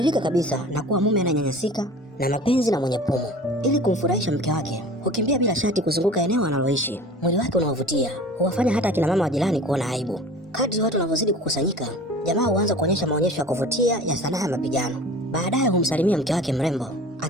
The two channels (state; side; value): normal; both; correlation 0.41